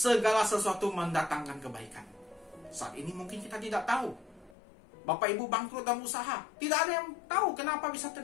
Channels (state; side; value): drops out; right; at 4.5 s